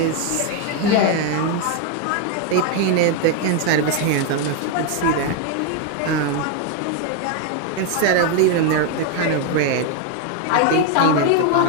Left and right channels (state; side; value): different; both; correlation 0.01